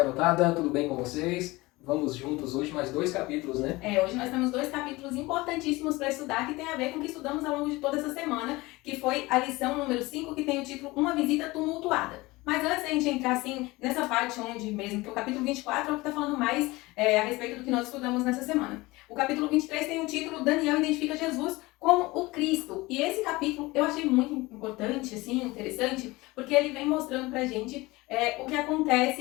tudo bem com vocês? Vamos juntos hoje mais 2 capítulos, né? Hoje nós temos 2 capítulos importantíssimos para estudar que tem a ver com o que estudamos ao longo de toda essa semana, que foi a lição número 5, que tem o título Uma Visita Tumultuada. Mas antes da gente entrar assim nessa parte onde mesmo, que o capítulo 24 é o que está falando mais a respeito do que nós estudamos nessa semana. O capítulo 23 tem o título Daniel identifica Jesus como o Cristo. E esse capítulo eu achei muito importante, assim, interessante, porque ele vem mostrando pra gente o que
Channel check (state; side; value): quieter; right; 21.4 dB